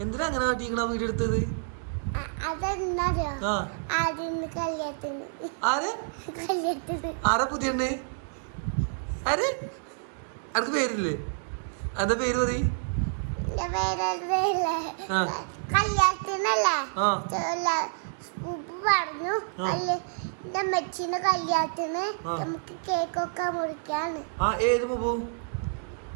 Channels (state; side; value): silent; left; digital silence